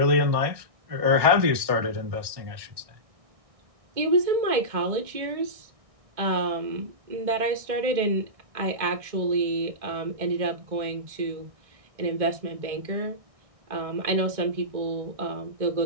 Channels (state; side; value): late; left; 1.6 ms